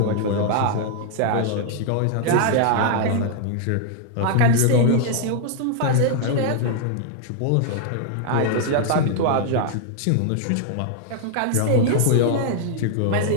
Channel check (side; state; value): both; different; correlation 0.00